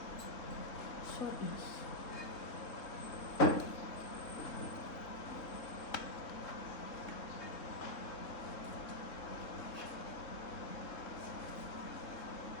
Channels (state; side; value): late; right; 3.7 ms